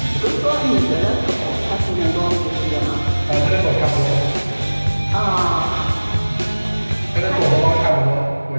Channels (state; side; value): inverted; both; correlation -1.00